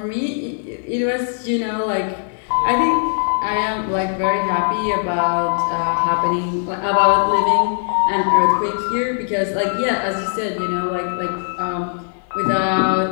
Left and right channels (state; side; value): silent; right; digital silence